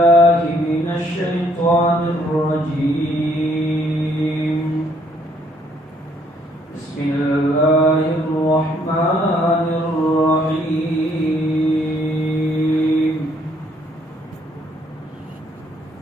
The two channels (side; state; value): both; normal; correlation 0.66